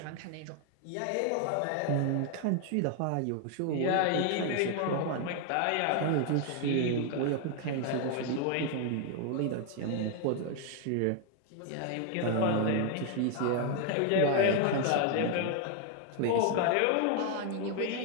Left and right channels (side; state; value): both; different; correlation 0.00